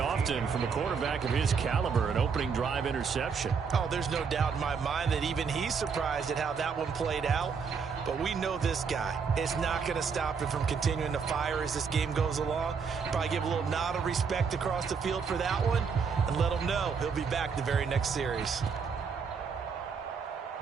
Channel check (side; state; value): left; quieter; 5.9 dB